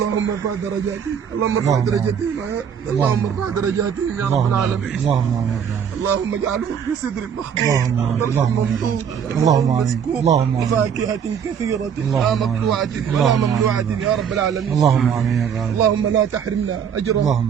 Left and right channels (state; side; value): quieter; left; 7.7 dB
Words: ارفع درجاتهم، اللهم ارفع درجاتهم، اللهم ارفع درجاتهم يا رب العالمين. اللهم امين. اللهم اجعلهم في صدر مخضوض اللهم ممدود، اللهم امين. مسكوب، اللهم امين. وفاكهة كثيرة لا مقطوعة ولا ممنوعة يا رب العالمين. اللهم امين يا رب. اللهم لا تحرمنا أجرا،